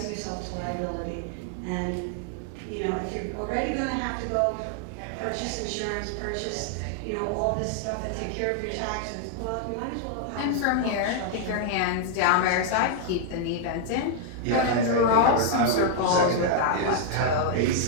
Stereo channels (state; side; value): different; both; correlation 0.00